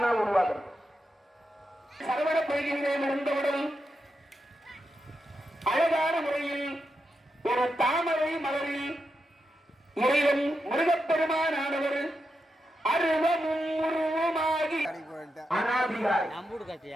உருவாகிறது. சரவண பொய்கையிலே இருந்தவுடன் அழகான முறையில் ஒரு தாமரை மலரில் இறைவன் முருகப்பெருமானானவர் அருவமும் உருவமாகி அனாதிகாய்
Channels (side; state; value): both; normal; correlation 0.86